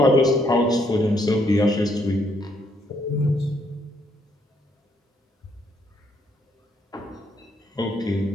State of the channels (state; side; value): normal; both; correlation 0.71